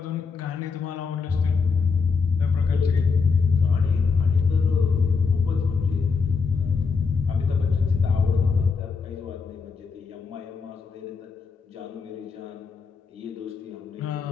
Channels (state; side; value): quieter; right; 5.1 dB